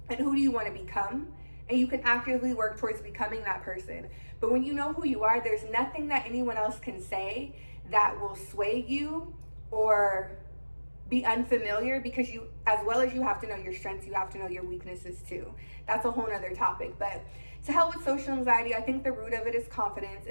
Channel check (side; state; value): both; inverted; correlation -1.00